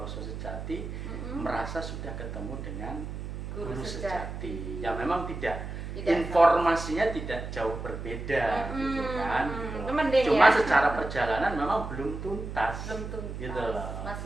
sejati, merasa sudah ketemu dengan guru sejati. Ya memang tidak informasinya tidak jauh berbeda, gitu kan. Gitu. Cuma secara perjalanan memang belum tuntas. Gitu loh.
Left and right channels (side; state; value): right; noise; hum, 7 dB below the sound